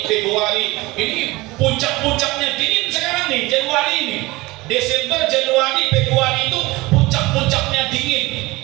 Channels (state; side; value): quieter; left; 21.3 dB